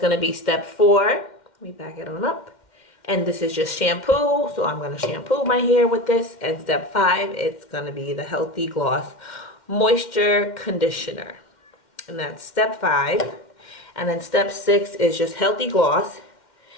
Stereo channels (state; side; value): late; right; 2.1 ms